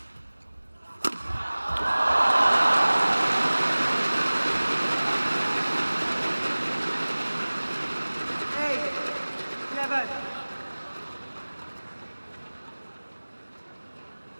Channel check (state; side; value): inverted; both; correlation -1.00